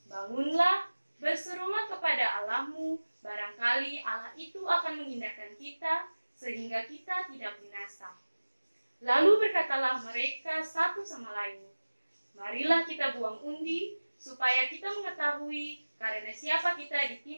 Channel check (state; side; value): inverted; both; correlation -1.00